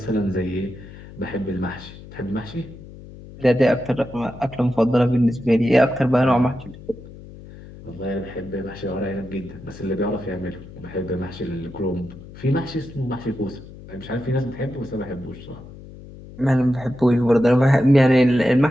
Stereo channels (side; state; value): left; noise; hum, 17 dB below the sound